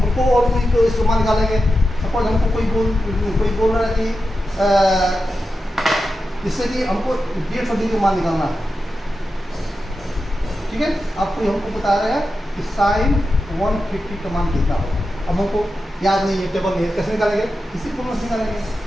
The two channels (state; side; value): normal; both; correlation 0.90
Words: और कोई इसको मान निकालेंगे। सपोज हमको कोई बोल रहा है कि जिससे कि हमको 150 डिग्री मान निकालना है। ठीक है, आप कोई हमको बता रहे हैं कि साइन 150 का मान कितना होगा। अब हमको याद नहीं है, टेबल नहीं है, कैसे निकालेंगे, इसी फॉर्मूला से निकालेंगे।